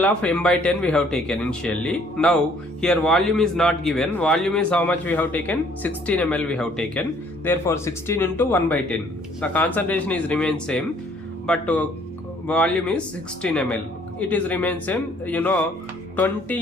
of m by 10 we have taken initially. Now here volume is not given. Volume is how much we have taken? 16 ml we have taken. Therefore 16 into 1 by 10. The concentration is remain same, but volume is 16 ml. It is remain same.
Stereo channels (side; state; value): both; normal; correlation 0.61